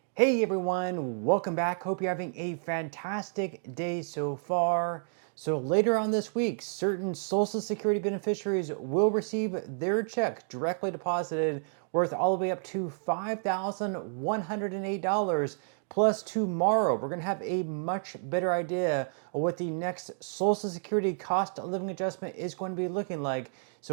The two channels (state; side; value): silent; left; digital silence